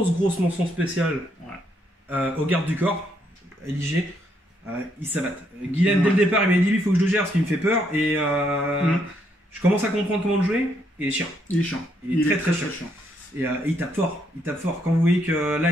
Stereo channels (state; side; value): normal; both; correlation 0.74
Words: mention spéciale Ouais. au garde du corps, Liger. Il s'abatte. Guylaine, Ouais. dès le départ, il m'a dit lui, il faut que je le gère parce qu'il me fait peur. Et Mm. je commence à comprendre comment le jouer. Et il est chiant. Il est chiant. Il est très chiant. Et il tape fort. Il tape fort. Quand vous voyez que là,